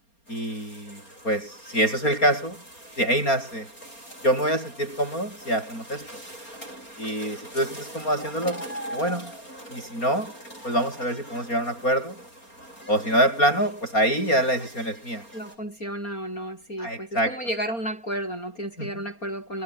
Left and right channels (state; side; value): late; right; 4.3 ms